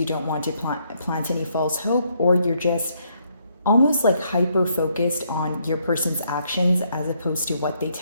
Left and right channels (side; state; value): both; inverted; correlation -0.73